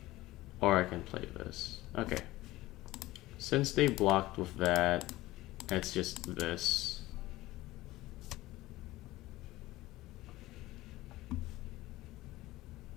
Or I can play this. Okay. Since they blocked with that, it's just this.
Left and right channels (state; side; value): quieter; right; 17.7 dB